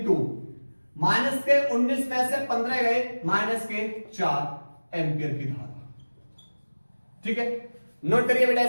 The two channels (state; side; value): inverted; both; correlation -1.00